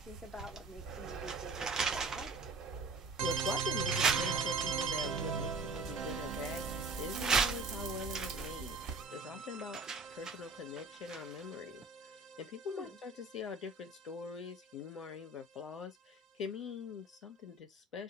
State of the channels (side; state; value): left; quieter; 3.4 dB